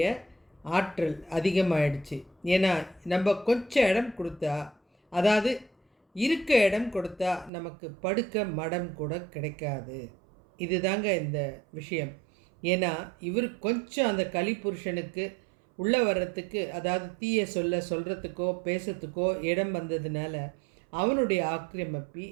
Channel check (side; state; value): left; drops out; at 7.5 s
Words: ஆற்றல் அதிகமாகிடுச்சு. ஏன்னா நம்ம கொஞ்சம் இடம் கொடுத்தா, அதாவது இருக்க இடம் கொடுத்தா நமக்கு படுக்க மடம் கூட கிடைக்காது. இதுதாங்க இந்த விஷயம். ஏன்னா இவர் கொஞ்சம் அந்த கலிபுருஷனுக்கு உள்ளே வர்றதுக்கு, அதாவது தீய சொல்கிறதுக்கோ பேசுறதுக்கோ இடம் வந்ததுனால அவனுடைய ஆக்கிரமிப்பி